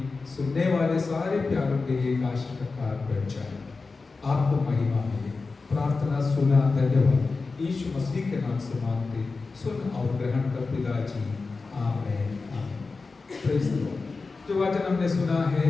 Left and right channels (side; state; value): right; quieter; 4.1 dB